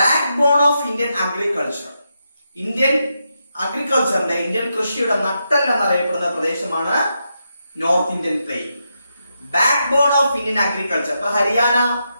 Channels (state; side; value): inverted; both; correlation -0.84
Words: Backbone of Indian agriculture. Indian അഗ്രികൾച്ചറിന്റെ, ഇന്ത്യൻ കൃഷിയുടെ നട്ടെല്ല് എന്നറിയപ്പെടുന്ന പ്രദേശമാണ് north Indian plain. Backbone of Indian agriculture. ഇപ്പൊ ഹരിയാന,